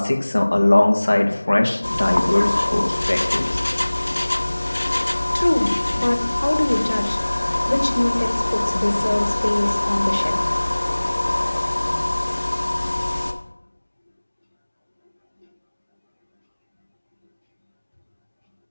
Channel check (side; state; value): both; inverted; correlation -1.00